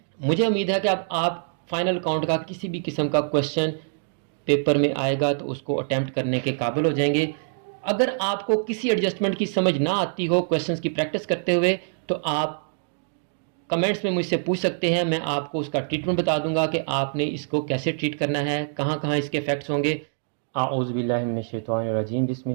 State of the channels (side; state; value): left; silent; digital silence